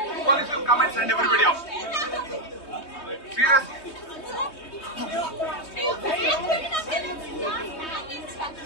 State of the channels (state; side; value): late; right; 3.2 ms